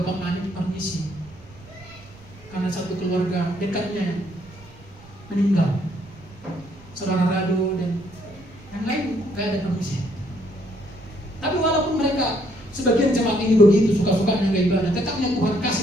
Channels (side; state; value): right; noise; rumble, 23 dB below the sound